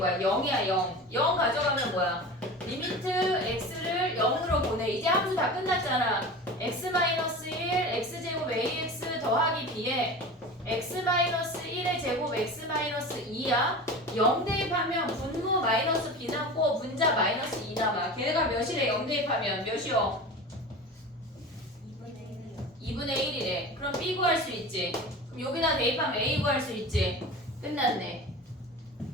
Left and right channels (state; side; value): normal; both; correlation 0.33